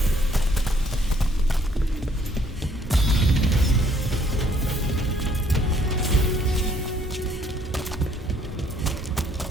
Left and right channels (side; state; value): both; normal; correlation 0.64